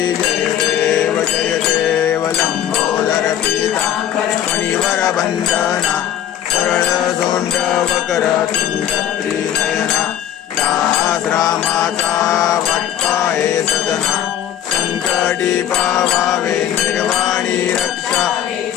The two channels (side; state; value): right; quieter; 10.9 dB